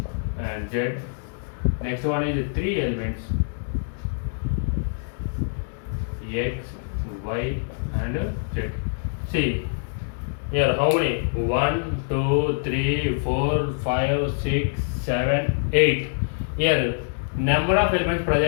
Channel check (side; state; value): right; silent; digital silence